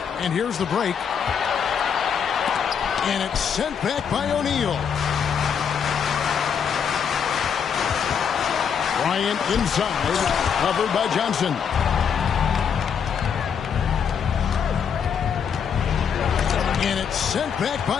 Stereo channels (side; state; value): right; quieter; 7.3 dB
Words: And here's the break. And it's sent back by O'Neal. Bryant inside. Covered by Johnson. And it's sent back